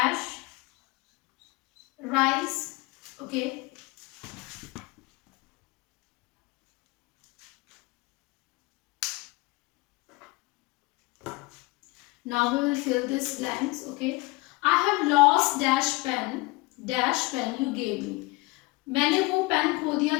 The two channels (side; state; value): right; quieter; 23.4 dB